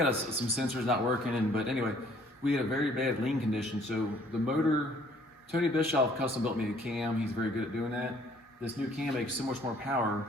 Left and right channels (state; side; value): normal; both; correlation 0.59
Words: some sensors not working, but anyway, we had a very bad lean condition. So the motor, Tony Bischoff custom built me a cam. He's very good at doing that. This new cam makes so much more power